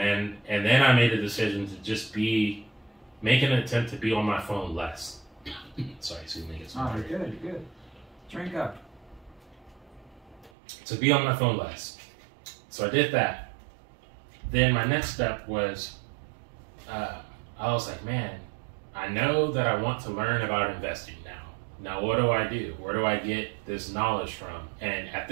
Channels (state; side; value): drops out; left; at 10.5 s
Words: I made a decision to just make an attempt to be on my phone less. Sorry, excuse me. You're good. Drink up. To be on my phone less. So I did that. Then my next step was, I was like, man, I know that I want to learn about investing now. Now, what do I do? Where do I get this knowledge from? And at